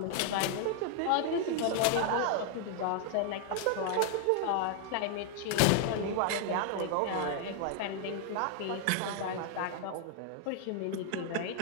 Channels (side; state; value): both; different; correlation 0.00